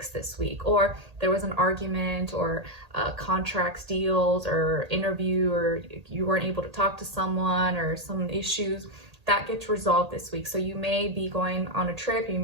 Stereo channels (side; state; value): left; late; 1.8 ms